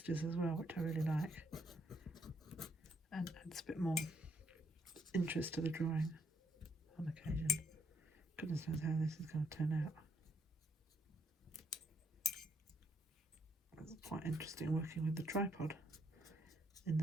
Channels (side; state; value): both; normal; correlation 0.72